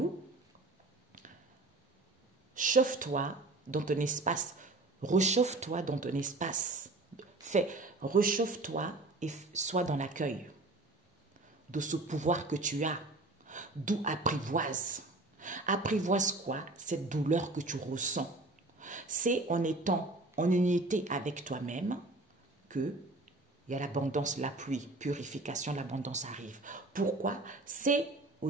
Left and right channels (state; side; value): quieter; left; 3.0 dB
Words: chauffe-toi dans ton espace, rechauffe-toi dans ton espace, rechauffe-toi et sois dans l'accueil de ce pouvoir que tu as, d'où apprivoise. Apprivoise quoi? Cette douleur que tu ressens. C'est en étant en unité avec toi-même que il y a l'abondance, la pluie, purification, l'abondance arrive. Pourquoi? C'est au